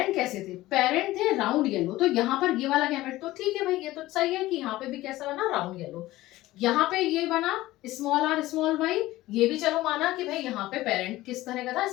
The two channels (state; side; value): quieter; right; 17.1 dB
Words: कैसे थे, पेरेंट थे राउंड येलो, तो यहाँ पर ये वाला गैमेट तो ठीक है भाई, ये तो सही है कि यहाँ पे भी कैसा बना, राउंड येलो। यहाँ पे ये बना स्मॉल आर स्मॉल वाई, ये भी चलो माना कि भाई यहाँ पे पेरेंट किस तरह का था,